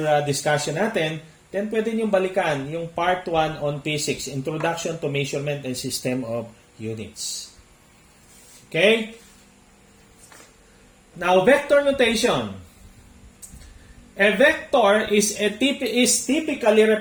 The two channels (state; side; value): identical; both; correlation 1.00